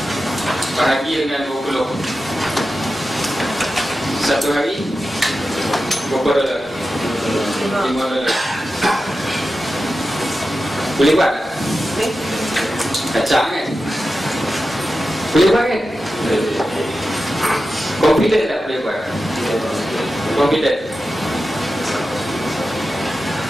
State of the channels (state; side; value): normal; both; correlation 0.92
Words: bahagi dengan 20. Satu hari berapa dolar? $5. Boleh buat tak? Kacang kan? Boleh buat kan? Confident tak boleh buat? Confident.